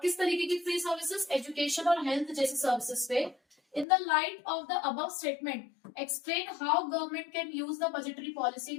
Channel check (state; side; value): drops out; right; at 3.9 s